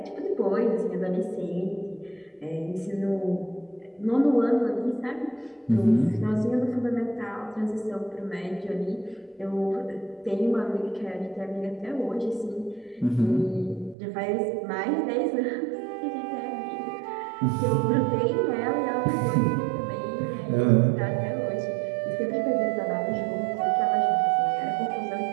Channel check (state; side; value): drops out; left; at 14.0 s